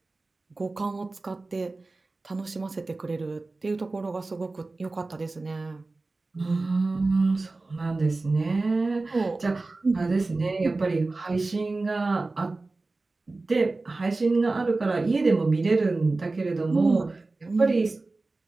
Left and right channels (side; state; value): left; quieter; 3.4 dB